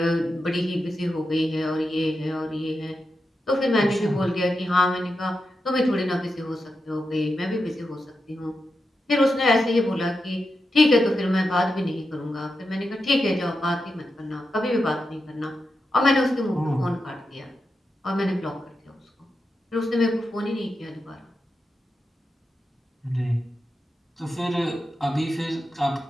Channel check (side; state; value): both; normal; correlation 0.88